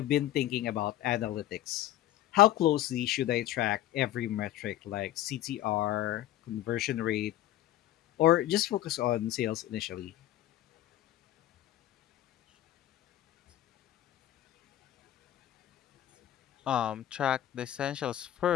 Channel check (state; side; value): quieter; right; 13.6 dB